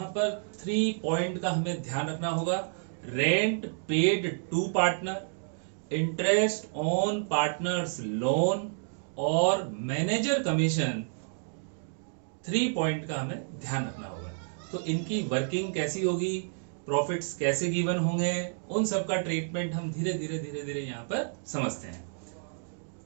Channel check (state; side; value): silent; left; digital silence